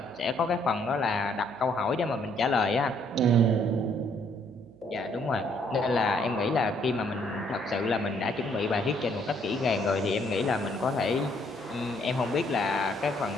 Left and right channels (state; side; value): noise; right; hum, 25 dB below the sound